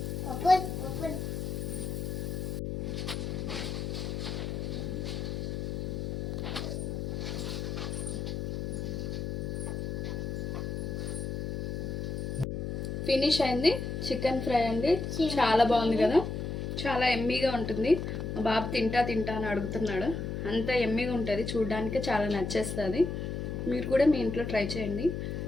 ఫినిష్ అయింది. చికెన్ ఫ్రై అండి, చాలా బాగుంది కదా, చాలా ఎమ్మీగా ఉంటుంది. మా బాబు తింటా అని అడుగుతున్నాడు, అంత ఎమ్మీగా ఉంటుంది, చూడడానికి చాలా నచ్చేస్తుంది. మీరు కూడా మీ ఇంట్లో ట్రై చేయండి.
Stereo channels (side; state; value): left; noise; hum, 3 dB below the sound